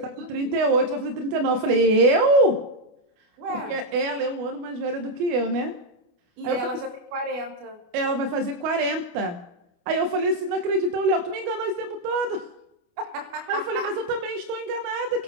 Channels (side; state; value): left; late; 28 ms